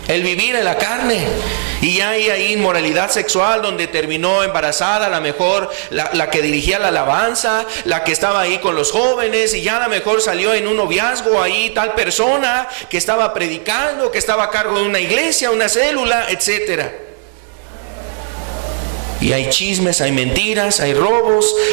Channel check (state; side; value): silent; left; digital silence